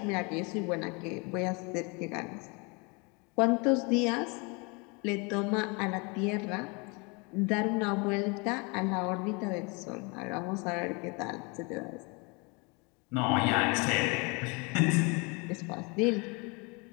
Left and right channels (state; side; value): quieter; right; 30.3 dB